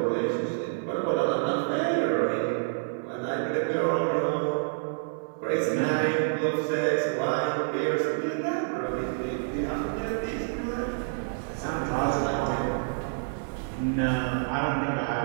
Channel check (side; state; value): left; silent; 59 dB below the other